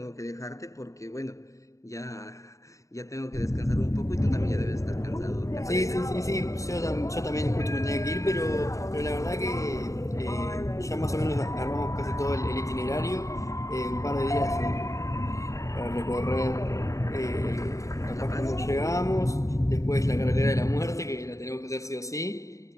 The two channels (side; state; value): right; late; 0.16 ms